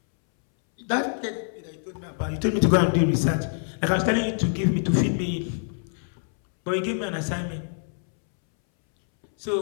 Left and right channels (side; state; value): right; silent; 62 dB below the other